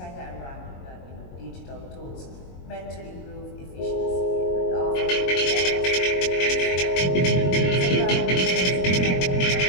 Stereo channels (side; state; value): right; late; 22 ms